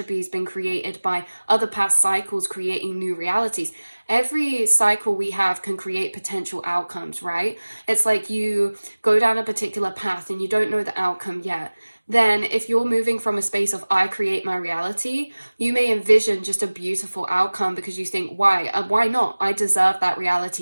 has been created by other past cycles creating new realities. Every cycle we have can create potential outcomes, right? It's like you go down a particular path and you don't know the outcome yet. Then if you're moving from a space of I create my reality, you may envision just a beautiful outcome because you think, why not? I deserve that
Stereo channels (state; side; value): inverted; both; correlation -1.00